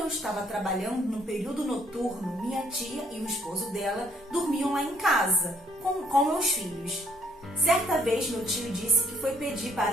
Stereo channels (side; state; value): both; normal; correlation 0.66